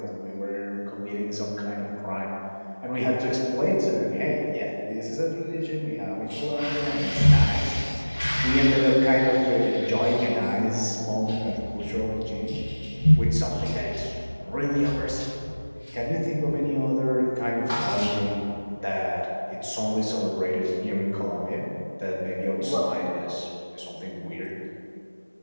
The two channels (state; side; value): inverted; both; correlation -1.00